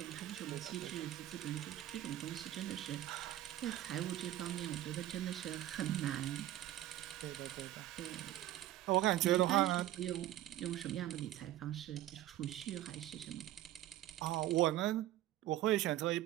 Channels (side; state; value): left; quieter; 13.9 dB